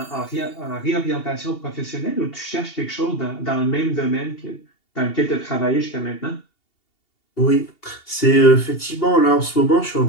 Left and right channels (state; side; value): late; right; 2.7 ms